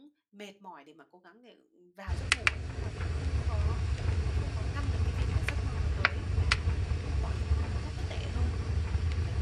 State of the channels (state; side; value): identical; both; correlation 1.00